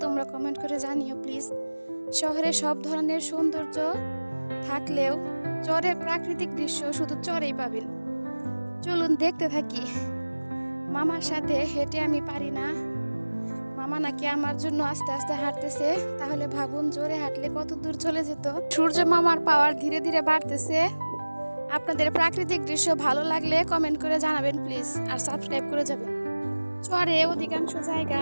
তোমরা কমেন্ট করে জানিও প্লিজ। শহরে সব ধরনের সৌন্দর্য থাকলেও চরের প্রাকৃতিক দৃশ্য শুধু চরেই পাবেন। চলুন দেখতে থাকি। মামার সাথে হেঁটে আমি পারি না, মামা নাকি আমার জন্য আস্তে আস্তে হাঁটতেছে। তাহলে ভাবুন জোরে হাঁটলে কত দূর চলে যেত। সূর্য মামার পাওয়ার ধীরে ধীরে বাড়তেছে। আপনাদের প্রাকৃতিক দৃশ্য ভালো লাগলে কমেন্ট করে জানাবেন প্লিজ, আর সাবস্ক্রাইব করে যাবেন। চরে অধিকাংশ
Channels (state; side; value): inverted; both; correlation -1.00